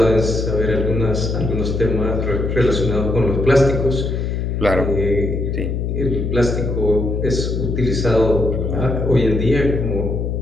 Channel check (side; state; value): left; noise; hum, 1 dB below the sound